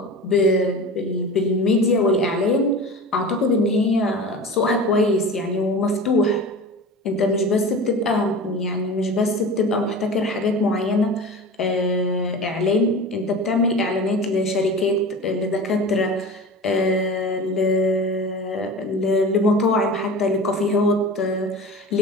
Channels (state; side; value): normal; both; correlation 0.34